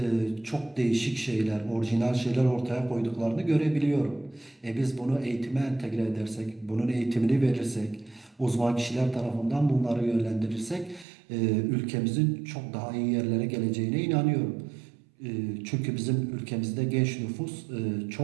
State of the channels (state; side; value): drops out; left; at 11.1 s